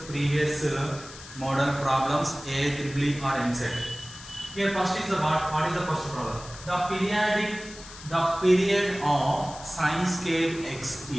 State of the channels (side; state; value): left; noise; hiss, 16 dB below the sound